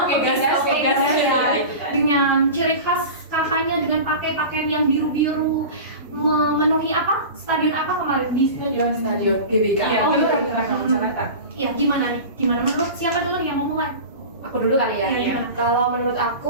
Gas, dengan ciri khas kakaknya dengan pakai pakaian yang biru-biru, memenuhi stadion apa kemarin di stadion GBK. Iya, Jakarta. Iya, gimana nih? Gimana menurut siapa dulu yang mau mulai? Aku dulu kali ya. Iya. Kalau menurut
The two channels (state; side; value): inverted; both; correlation -0.32